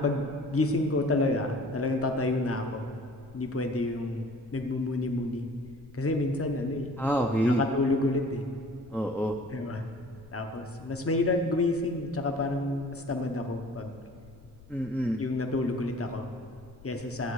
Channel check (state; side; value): noise; left; rumble, 22 dB below the sound